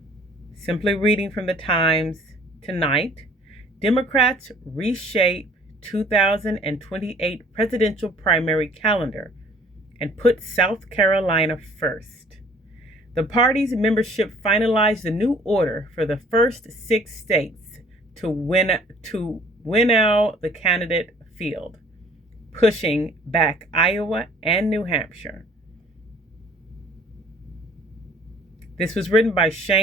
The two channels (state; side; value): normal; both; correlation 0.55